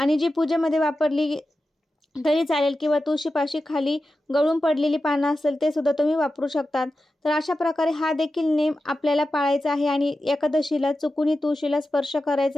जी पूजेमध्ये वापरली तरी चालेल किंवा तुळशीपाशी खाली गळून पडलेली पानं असेल ते सुद्धा तुम्ही वापरू शकतात. तर अशा प्रकारे हा देखील नेम आपल्याला पाळायचा आहे आणि एकादशीला चुकूनही तुळशीला स्पर्श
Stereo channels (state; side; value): normal; both; correlation 0.92